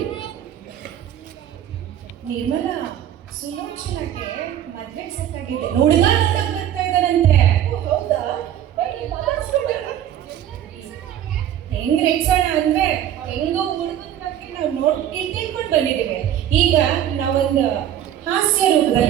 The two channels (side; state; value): left; quieter; 10.9 dB